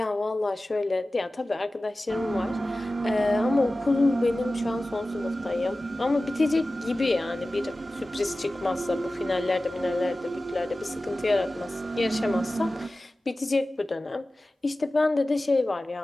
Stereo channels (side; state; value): both; normal; correlation 0.96